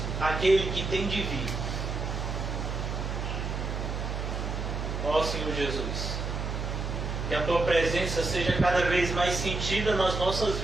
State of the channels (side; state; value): right; noise; hum, 3 dB below the sound